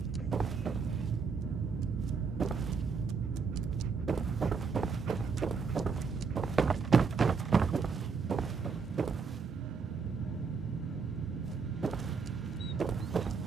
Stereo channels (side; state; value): left; quieter; 5.3 dB